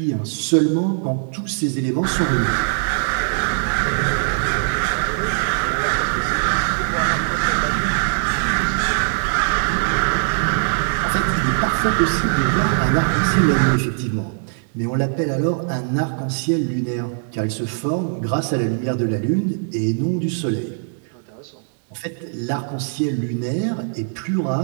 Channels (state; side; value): silent; left; digital silence